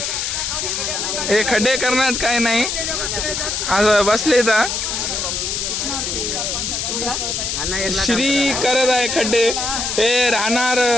हे खड्डे करण्यात काही नाही, असं बसले. तर श्री करत आहे खड्डे. हे राहणार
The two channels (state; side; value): noise; left; hiss, 2 dB below the sound